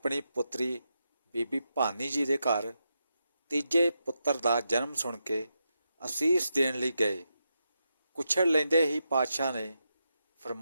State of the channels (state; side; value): inverted; both; correlation -0.86